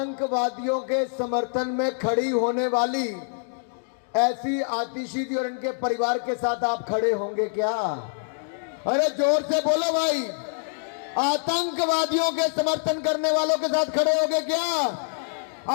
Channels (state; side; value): silent; right; digital silence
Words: के समर्थन में खड़ी होने वाली ऐसी आतिशी जी और इनके परिवार के साथ आप खड़े होंगे क्या? अरे जोर से बोलो भाई। आतंकवादियों के समर्थन करने वालों के साथ खड़े होंगे क्या?